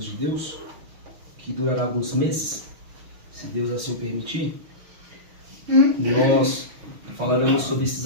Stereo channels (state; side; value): late; left; 6.4 ms